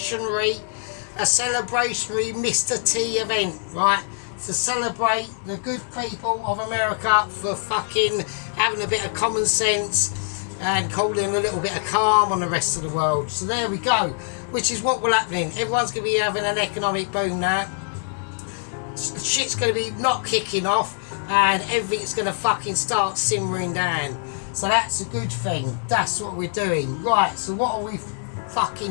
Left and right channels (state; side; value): silent; right; 62 dB below the other